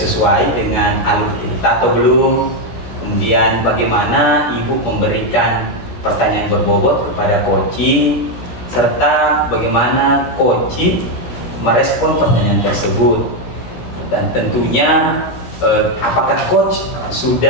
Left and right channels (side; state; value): right; late; 16 ms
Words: dengan alur kita atau belum? Kemudian bagaimana Ibu memberikan pertanyaan berbobot kepada coaching, serta bagaimana coaching merespon pertanyaan tersebut. Dan tentunya apakah coach